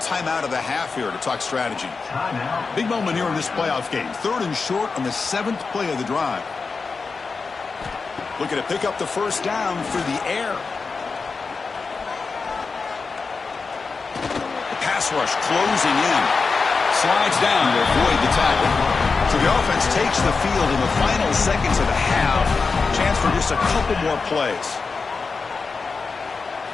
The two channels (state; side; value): quieter; right; 4.6 dB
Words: of the half here to talk strategy. Big moment here in this playoff game. 3rd and short on the 7th play of the drive. Looking to pick up the first down through the air. The pass rush closing in. Slides down to avoid the tackle. So the offense takes the field in the final seconds of the half. Chance for just a couple more plays.